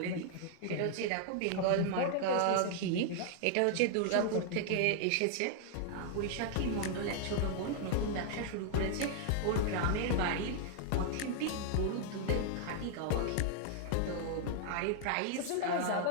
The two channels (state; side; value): different; both; correlation 0.00